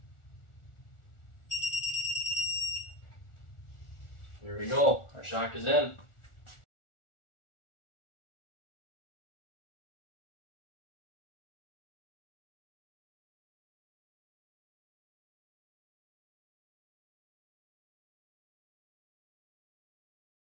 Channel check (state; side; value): late; right; 1.4 ms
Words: Here we go, our shock is in.